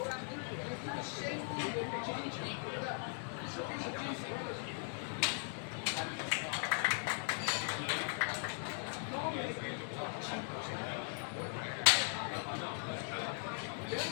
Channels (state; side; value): silent; right; 51 dB below the other